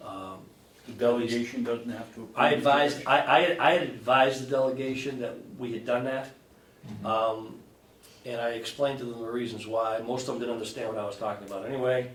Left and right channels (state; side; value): identical; both; correlation 1.00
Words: delegation doesn't have to. approve I it. advised, I had advised the delegation that we had done that. And I explained to them the reasons why. Most of them didn't understand what I was talking about anyway.